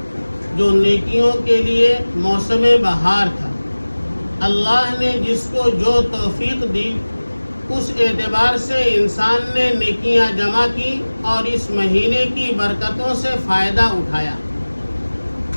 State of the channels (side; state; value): both; inverted; correlation -1.00